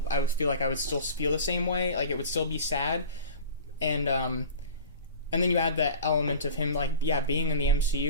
I would feel like I would still feel the same way. Like, it would still be sad. And then you add that element of him, like, yeah, being in the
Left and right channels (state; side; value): inverted; both; correlation -0.38